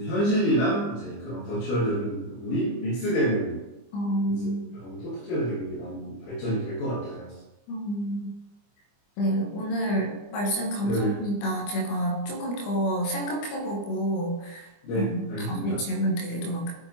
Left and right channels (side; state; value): right; late; 24 ms